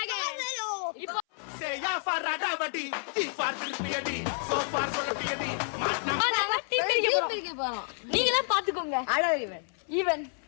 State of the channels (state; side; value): silent; right; 58 dB below the other